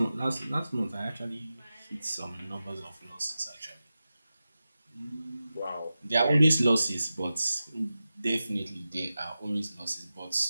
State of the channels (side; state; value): both; inverted; correlation -0.94